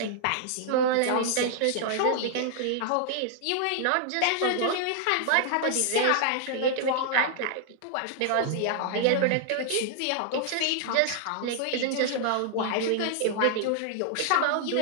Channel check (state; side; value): different; both; correlation 0.00